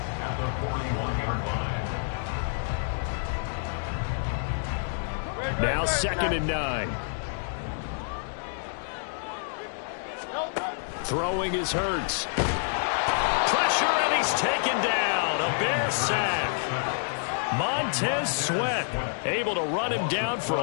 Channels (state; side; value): silent; right; digital silence